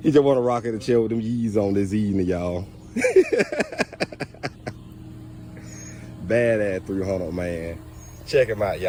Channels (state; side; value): identical; both; correlation 1.00